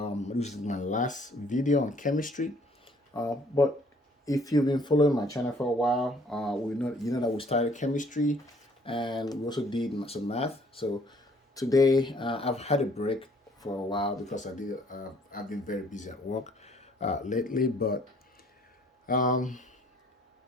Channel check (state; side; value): normal; both; correlation 0.60